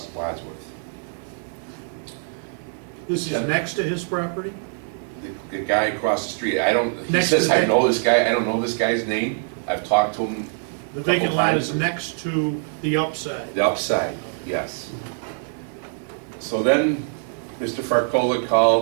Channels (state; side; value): silent; left; 63 dB below the other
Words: Wadsworth. This is next to his property? The guy across the street, he Next to says, the- I know this guy, I don't know this guy's name. I've talked to him. The a couple vacant lot times. is next to the upside. The upside, yes. So then, Mr. Farcola